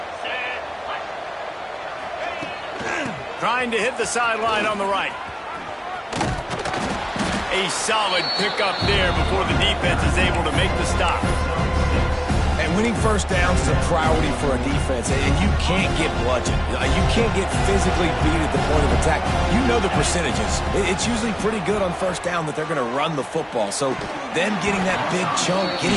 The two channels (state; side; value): identical; both; correlation 1.00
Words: Trying to hit the sideline on the right. A solid pickup there before the defense is able to make the stop. And winning first downs is a priority for a defense, and you can't get bludgeoned. You can't get physically beat at the point of attack. You know the percentages. It's usually pretty good on first down that they're going to run the football. So them getting that big chunk, getting